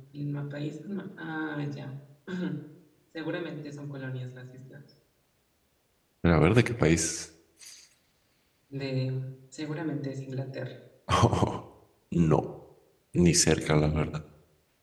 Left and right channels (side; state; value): both; identical; correlation 1.00